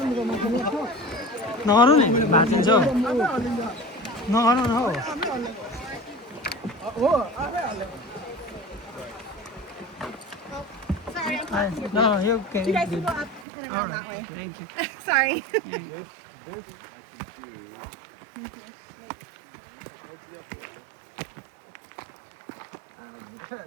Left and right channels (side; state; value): left; drops out; at 13.5 s